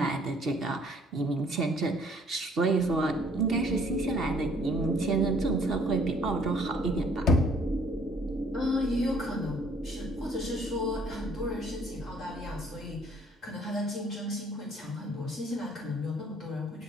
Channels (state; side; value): normal; both; correlation 0.60